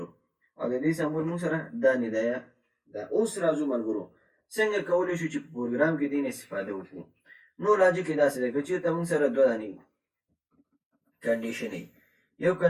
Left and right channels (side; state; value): both; identical; correlation 1.00